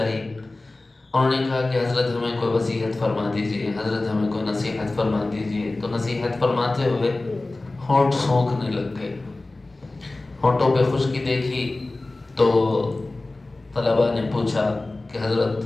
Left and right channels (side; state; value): right; quieter; 3.0 dB